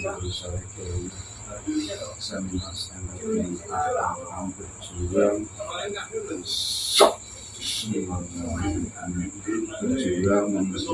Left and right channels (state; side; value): identical; both; correlation 1.00